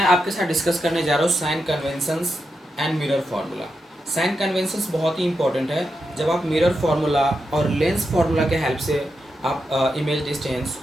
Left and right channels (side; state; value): both; normal; correlation 0.86